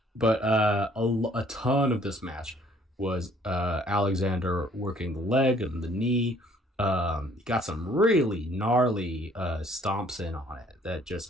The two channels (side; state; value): both; normal; correlation 0.60